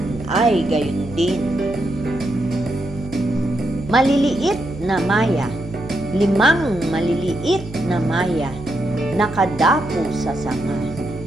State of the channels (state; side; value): noise; right; hum, 14 dB below the sound